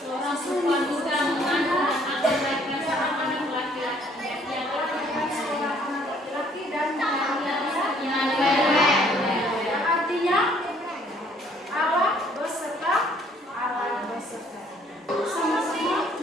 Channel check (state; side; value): normal; both; correlation 0.62